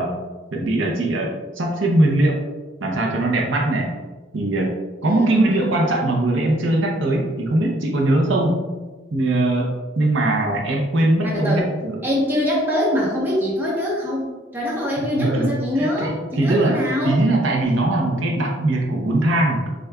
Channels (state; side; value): normal; both; correlation 0.66